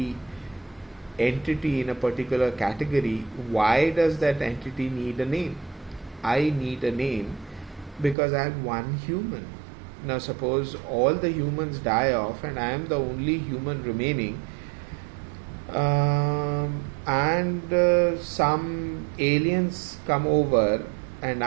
entity in a particular category, why does that entity need a name? I need a name because I am one human. Now suppose all the humans die off and I am the only human remaining, and some aliens come over and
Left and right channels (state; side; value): drops out; left; at 8.2 s